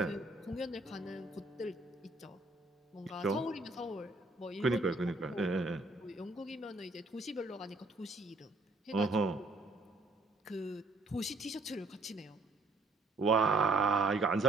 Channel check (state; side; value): quieter; left; 3.1 dB